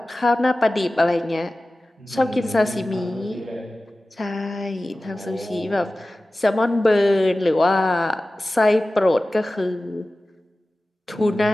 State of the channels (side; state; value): both; normal; correlation 0.96